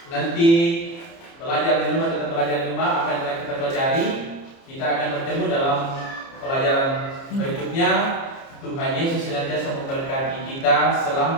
nanti belajar di rumah, tetap belajar di rumah apa yang telah kita pelajari. Kita akan bertemu dalam pelajaran berikutnya. Tuhan Yesus senantiasa memberkati kita.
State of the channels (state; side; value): late; right; 30 ms